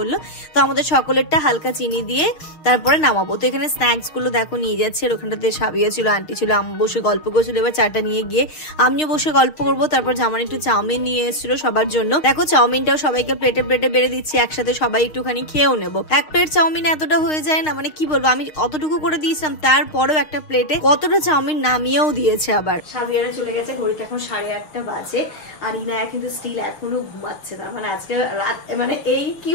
তো আমাদের সকলেরটা হালকা চিনি দিয়ে তারপরে নামাবো। তো এখানে স্ন্যাক্স গুলো দেখো নিয়ে যাচ্ছে, আর ওখানটাতে সাবিয়া ছিল, আন্টি ছিল, আম্মা বসে গল্প করছিল। এবার চাটা নিয়ে গিয়ে আমিও বসে গল্প করবো। তারপর জামান একটু চাউমিন নিয়ে এসেছিল সবার জন্য। দেখো চাউমিনটাও সবাইকে প্লেটে প্লেটে বেড়ে দিচ্ছি, একসাথে সবাই একটুখানি খেয়েও নেবো। এক প্লেট চাউমিন এতটা হয়ে যায় না, মানে কি বলবো, আমি অতটুকু করে দিয়েছিলাম, তারপরেও একটা প্লেটে কতটা চাউমিন নামিয়েও দিয়েছে। আবার সাবিয়ারা চলে গেছে, ঘড়িতে এখন 8:30 বাজে। আর ইনায়া কিন্তু স্টিল এখনো ঘুমাচ্ছে। তার মানে আজকে রাত, মানে এই কি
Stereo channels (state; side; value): late; right; 6.5 ms